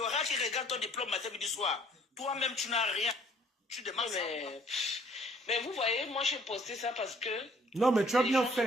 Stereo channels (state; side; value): normal; both; correlation 0.59